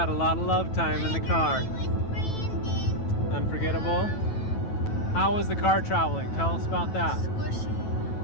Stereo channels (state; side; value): late; right; 9.2 ms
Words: a lot of love time in the car. With Brandon. Unforgettable. How was the car traveling? Tell us about that.